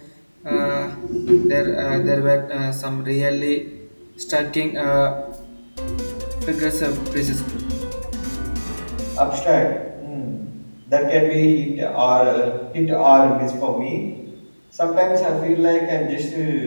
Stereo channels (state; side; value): inverted; both; correlation -1.00